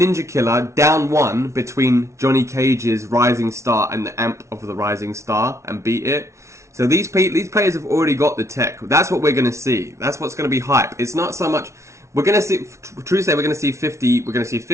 Killa down 1 between Johnny Cage's Rising Star and the amp of the Rising Star and beat it. So these players have already got the tech. That's what we're going to see. That's what's going to be hype. It's not so much... We're going to see, true to say, we're going to see 50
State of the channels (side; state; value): left; late; 0.14 ms